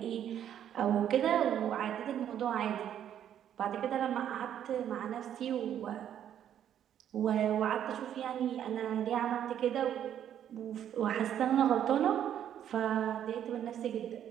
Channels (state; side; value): quieter; left; 10.1 dB